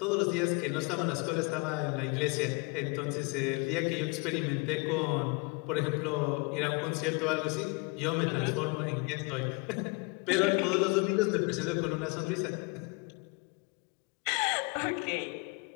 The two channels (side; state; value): right; quieter; 30.8 dB